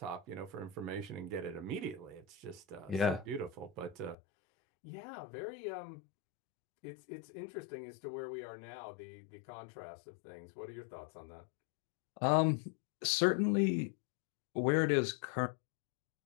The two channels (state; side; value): drops out; right; at 4.2 s